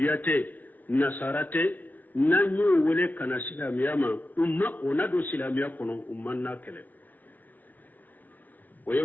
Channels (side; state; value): right; late; 0.082 ms